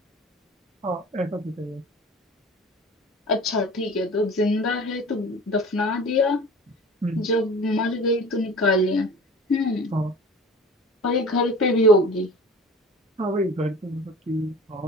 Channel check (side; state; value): both; normal; correlation 0.40